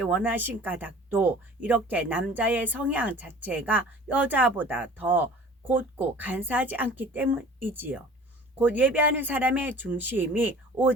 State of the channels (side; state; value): both; normal; correlation 0.45